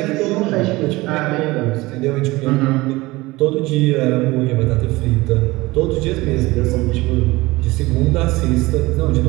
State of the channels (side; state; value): left; quieter; 20.7 dB